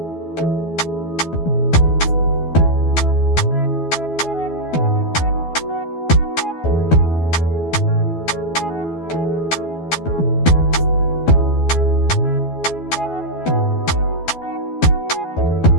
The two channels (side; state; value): right; late; 12 ms